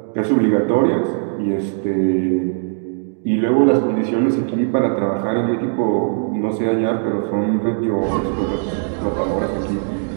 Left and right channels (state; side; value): silent; left; digital silence